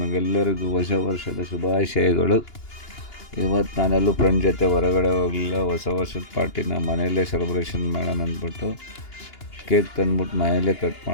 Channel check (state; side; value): late; right; 2.8 ms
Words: ಹೊಸ ವರ್ಷದ ಶುಭಾಶಯಗಳು. ಇವತ್ತು ನಾನೆಲ್ಲೂ ಫ್ರೆಂಡ್ ಜೊತೆ ಹೊರಗಡೆ ಹೋಗಲಿಲ್ಲ. ಹೊಸ ವರ್ಷದ ಪಾರ್ಟಿನ ಮನೆಯಲ್ಲೇ ಸೆಲೆಬ್ರೇಷನ್ ಮಾಡೋಣ ಅಂದ್ಬಿಟ್ಟು ಕೇಕ್ ತಂದ್ಬಿಟ್ಟು ಮನೆಯಲ್ಲೇ ಕಟ್